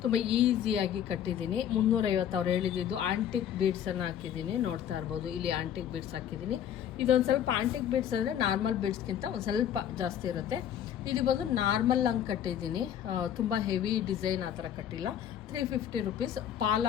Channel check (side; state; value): right; quieter; 9.9 dB